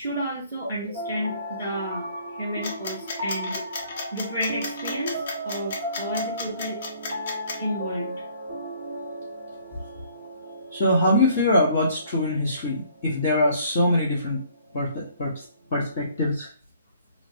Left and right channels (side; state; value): both; inverted; correlation -0.59